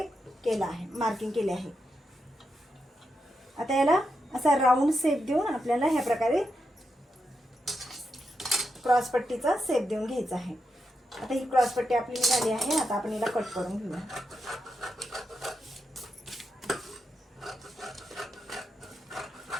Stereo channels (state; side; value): normal; both; correlation 0.85